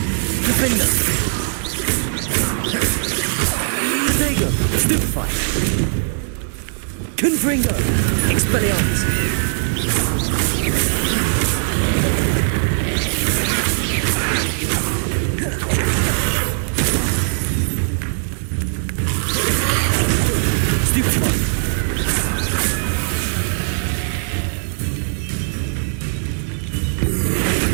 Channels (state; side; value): silent; left; digital silence